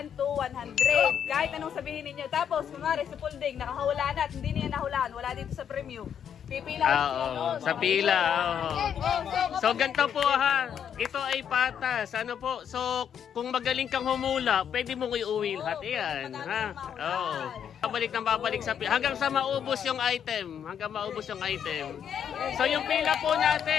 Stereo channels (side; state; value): right; quieter; 8.5 dB